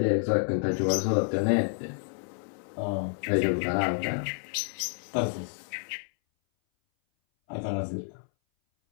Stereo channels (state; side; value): silent; right; 58 dB below the other